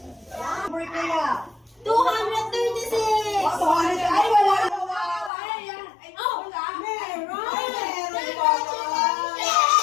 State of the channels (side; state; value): right; drops out; at 5.3 s